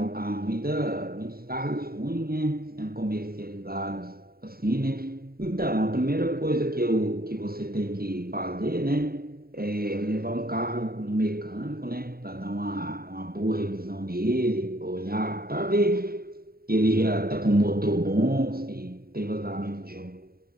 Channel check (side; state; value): left; late; 0.44 ms